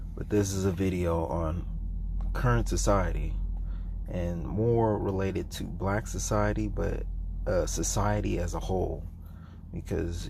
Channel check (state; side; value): identical; both; correlation 1.00